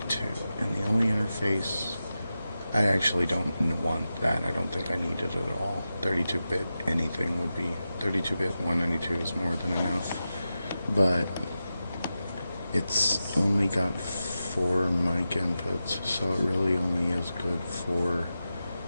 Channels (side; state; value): both; inverted; correlation -0.92